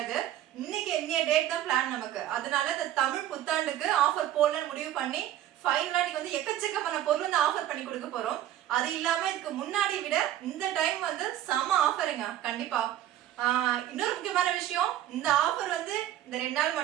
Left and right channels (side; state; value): left; quieter; 12.4 dB